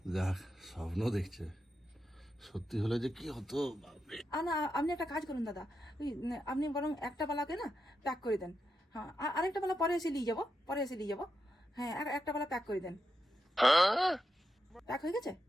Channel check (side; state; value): both; normal; correlation 0.86